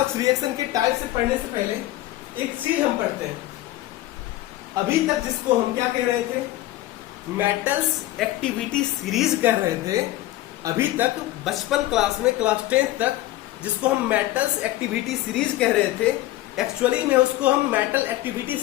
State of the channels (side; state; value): right; quieter; 16.0 dB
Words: रिएक्शन के टाइप से पढ़ने से पहले एक चीज हम पढ़ते हैं। अभी तक जिसको हम क्या कह रहे थे, मेटल्स एक्टिविटी सीरीज कह रहे थे। अभी तक बचपन क्लास में, क्लास 10th तक, जिसको हम मेटल्स एक्टिविटी सीरीज कह रहे थे, एक्चुअली में उसको हम मेटल एक्टिविटी